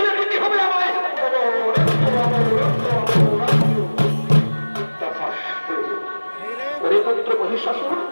দিতে হবে আমায়। ওরে পুত্র মহিষাসুর,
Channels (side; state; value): both; inverted; correlation -1.00